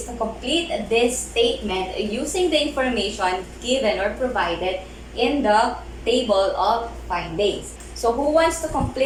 to complete this statement using the information given or provided in the table of findings. So who wants to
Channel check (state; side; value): identical; both; correlation 1.00